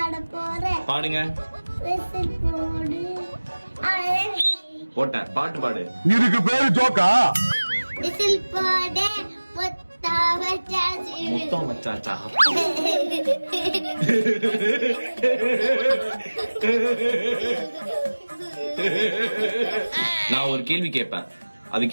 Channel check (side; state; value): both; inverted; correlation -1.00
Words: போறேன். பாடுங்க. போட்டேன் பாட்டு பாடு. இதுக்கு பேரு ஜோக்கா? விசில் போடு முத்தம் வச்சாச்சா? நான் ஒரு கேள்வி கேட்பேன்,